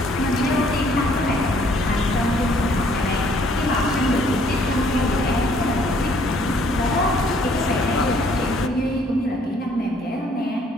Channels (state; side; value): normal; both; correlation 0.63